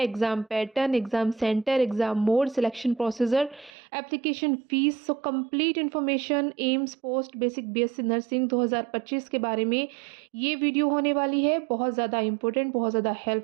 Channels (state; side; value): drops out; left; at 3.7 s